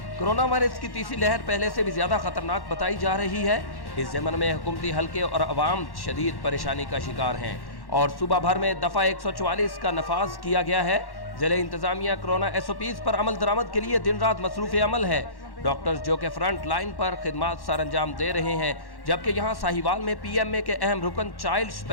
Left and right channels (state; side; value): late; right; 1.1 ms